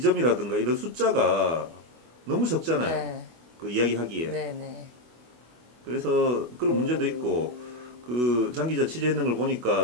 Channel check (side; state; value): left; late; 24 ms